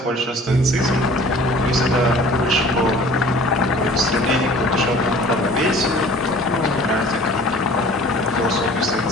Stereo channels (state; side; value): normal; both; correlation 0.48